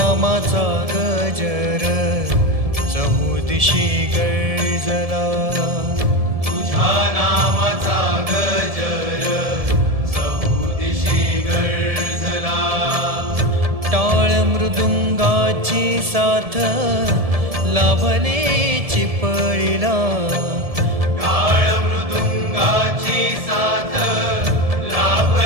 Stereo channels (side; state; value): left; late; 1.7 ms